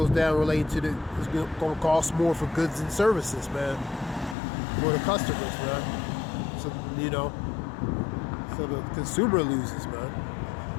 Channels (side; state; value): right; drops out; at 4.4 s